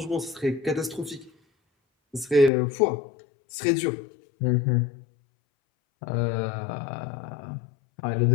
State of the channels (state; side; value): drops out; right; at 2.5 s